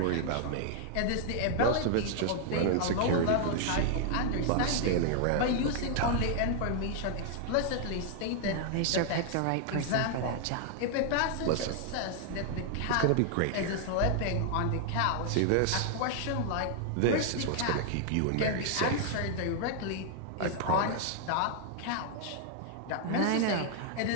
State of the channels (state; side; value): different; both; correlation 0.00